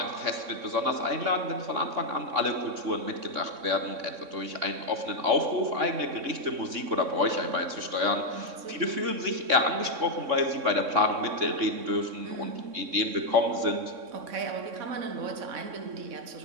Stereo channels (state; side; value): late; left; 3.6 ms